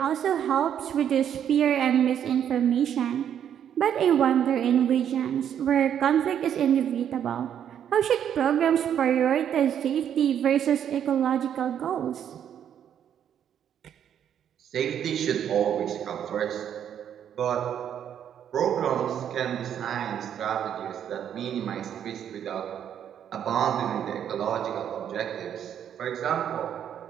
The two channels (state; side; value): quieter; left; 9.3 dB